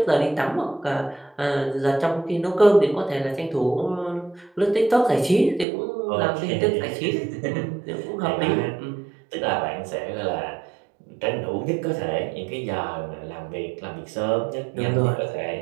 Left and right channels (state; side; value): drops out; left; at 5.7 s